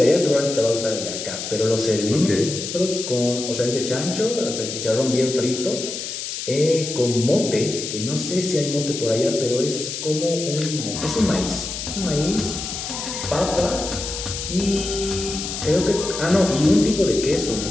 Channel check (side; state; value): left; noise; hiss, 6 dB below the sound